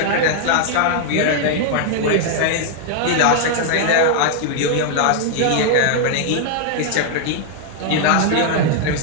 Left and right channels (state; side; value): different; both; correlation 0.00